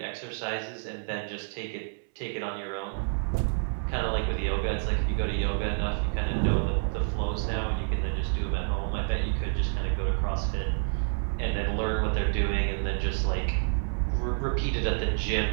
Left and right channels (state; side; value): silent; left; 58 dB below the other